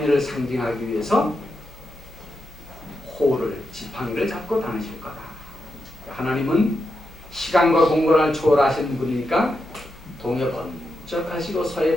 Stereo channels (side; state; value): both; normal; correlation 0.86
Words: 상징하기 위해서 호를 지팡이를 잡고 다니실 거다. 하나님은 시간과 공간을 초월하신 분이니까 동에 번쩍 하시고